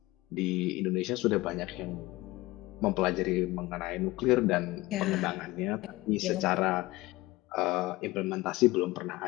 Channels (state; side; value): quieter; right; 19.8 dB